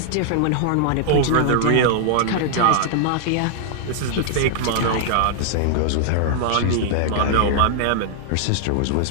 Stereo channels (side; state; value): both; different; correlation -0.01